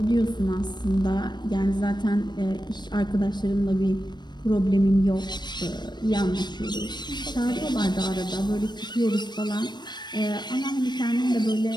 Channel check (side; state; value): right; late; 0.21 ms